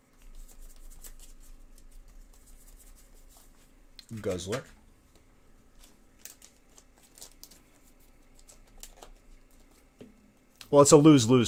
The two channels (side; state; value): both; identical; correlation 1.00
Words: Guzzler. Well, it's a lose-lose